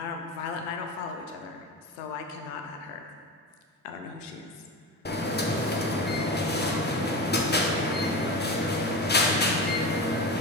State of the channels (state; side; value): normal; both; correlation 0.25